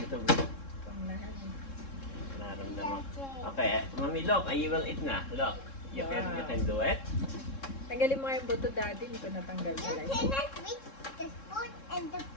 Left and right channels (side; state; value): right; late; 3.7 ms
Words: Panglahan. naramdaman. Okay, mami, look. I will eat na. Look. You can do it. Tanggalin mo nga yung buto, daddy. Hindi ko natanggal You pala. cannot reach the spoon and the